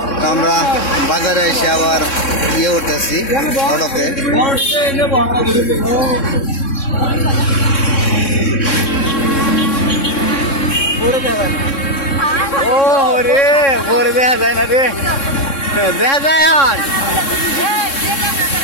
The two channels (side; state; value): right; late; 3.6 ms